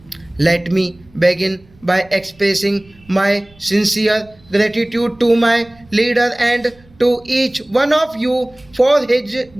Let me begin by expressing my sincere gratitude to my leader and to each one of you for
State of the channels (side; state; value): right; noise; rumble, 28 dB below the sound